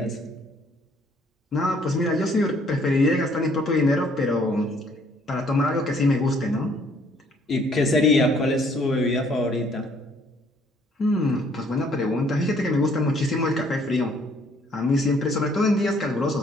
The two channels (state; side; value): normal; both; correlation 0.63